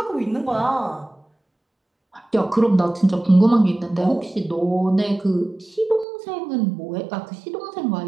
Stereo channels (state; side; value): drops out; left; at 6.1 s